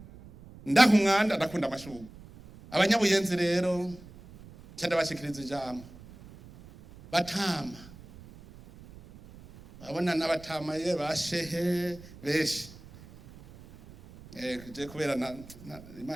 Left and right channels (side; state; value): right; noise; rumble, 19 dB below the sound